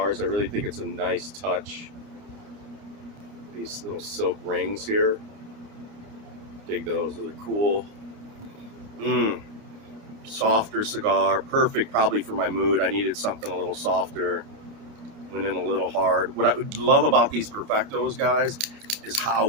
I really think it's a nice touch. These little silk rings here. Dig those. Those are cool. Softer cigar. Perfect probably for my mood. I needed something a little softer. Went in a little hard. What I would love about these Perfectos, guys, is how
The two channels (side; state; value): left; late; 29 ms